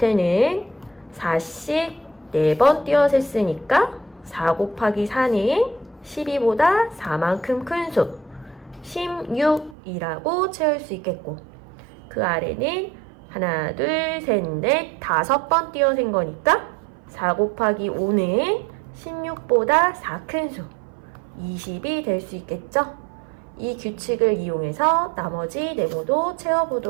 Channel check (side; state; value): left; drops out; at 9.8 s